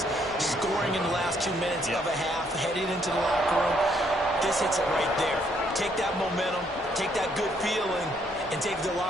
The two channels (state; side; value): normal; both; correlation 0.70